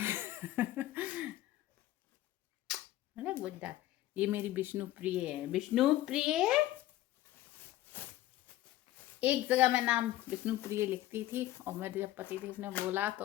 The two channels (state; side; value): quieter; right; 15.1 dB